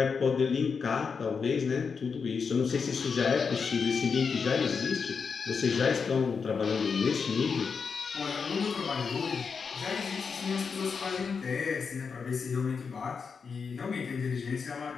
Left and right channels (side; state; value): right; quieter; 5.6 dB